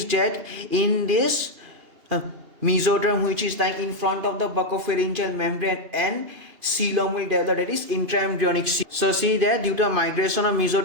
that in this mesoderm which is lying in front of the buccopharyngeal membrane and coelom will develop, that is intraembryonic coelom. So see that due to migration of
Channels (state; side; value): late; left; 2.8 ms